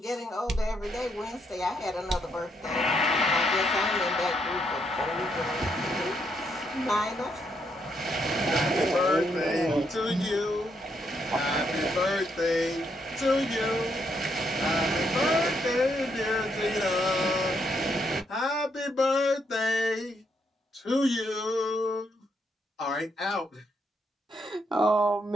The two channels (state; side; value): normal; both; correlation 0.76